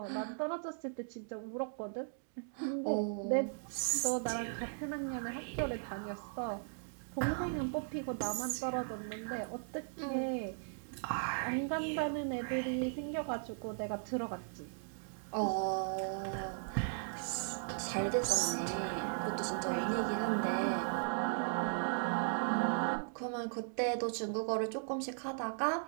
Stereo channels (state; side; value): silent; left; digital silence